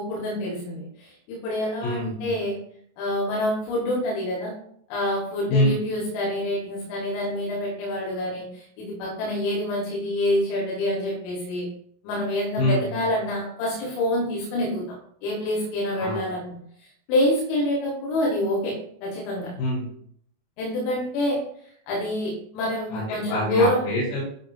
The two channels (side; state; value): right; late; 28 ms